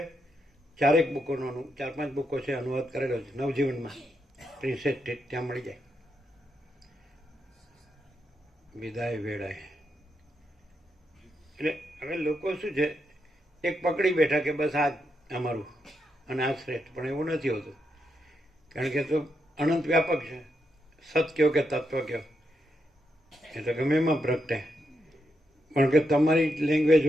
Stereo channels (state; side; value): normal; both; correlation 0.82